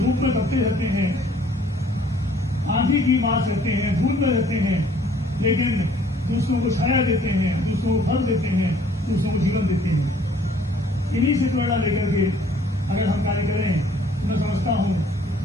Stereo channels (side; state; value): both; normal; correlation 0.58